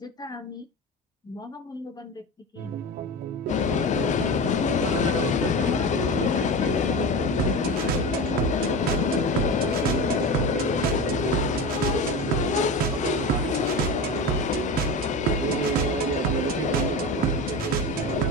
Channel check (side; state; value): both; normal; correlation 0.26